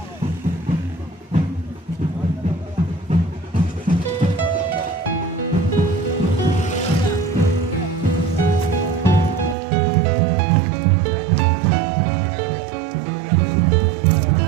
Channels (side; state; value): left; drops out; at 9.6 s